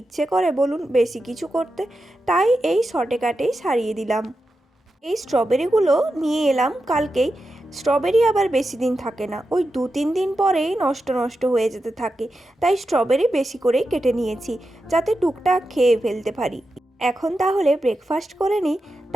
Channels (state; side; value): normal; both; correlation 0.89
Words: করে বলুন বেশি কিছু করতে, তাই এই শর্টে কাটেই সারিয়ে দিলাম। এই স্ট্রবেরিগুলো নিয়ে এলাম কালকেই। স্ট্রবেরি আবার বেশি দিন থাকে না, ওই 2-3 দিন পরেই নষ্ট হয়ে যেতে থাকে। তাই স্ট্রবেরি বেশি করেই কেটে নিয়েছি, যাতে টুকটাক খেয়ে ফেলতে পারি। এখন তাহলে ব্রেকফাস্ট করে নিই,